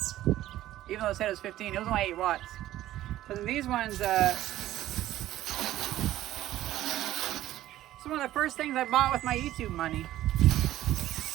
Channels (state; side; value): quieter; left; 14.2 dB